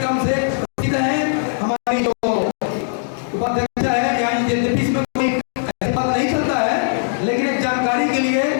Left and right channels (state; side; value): silent; right; digital silence